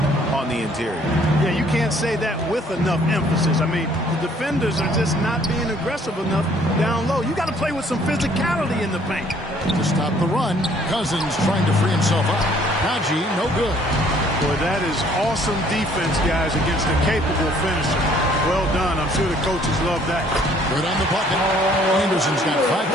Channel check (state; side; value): normal; both; correlation 0.60